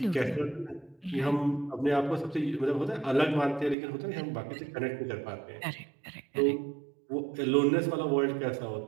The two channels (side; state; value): left; drops out; at 3.8 s